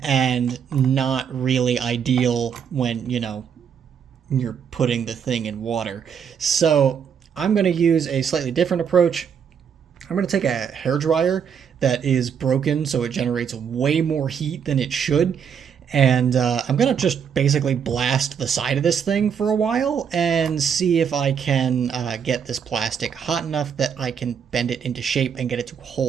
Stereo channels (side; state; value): left; quieter; 7.5 dB